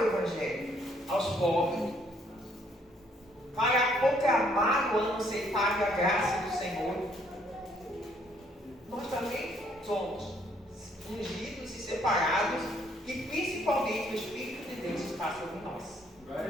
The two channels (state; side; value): normal; both; correlation 0.67